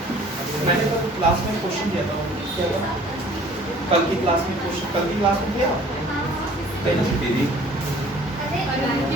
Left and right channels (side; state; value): both; normal; correlation 0.52